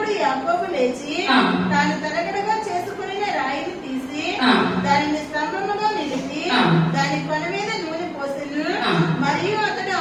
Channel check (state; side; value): identical; both; correlation 1.00